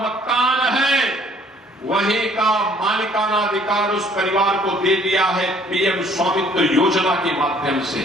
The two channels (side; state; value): both; normal; correlation 0.59